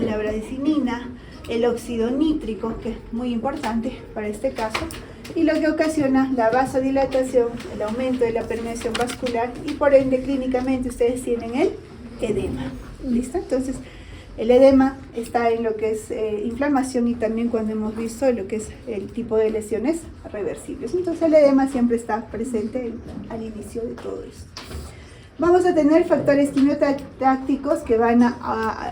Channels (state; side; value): identical; both; correlation 1.00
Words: bradicina, el óxido nítrico, que es muy importante para este caso, y lo que ocasiona la vasodilatación, el aumento de la permeación vascular, y por ende clínicamente ustedes tienen el edema. ¿Listo? Entonces, el edema está en lo que es inflamación, y también cuando hemos visto lo que es el tipo de lesiones reversibles. Entonces, el edema siempre está presente al inicio de todo esto. Vamos a tener factores quimiotácticos que van